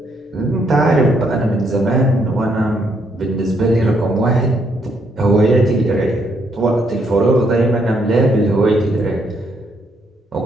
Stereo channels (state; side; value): normal; both; correlation 0.73